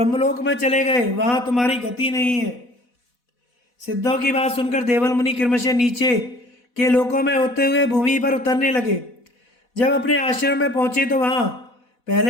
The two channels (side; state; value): right; late; 4.1 ms